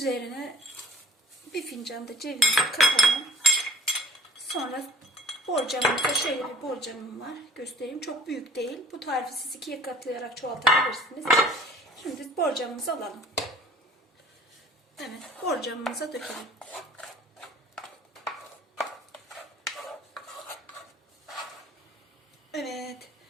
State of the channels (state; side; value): normal; both; correlation 0.51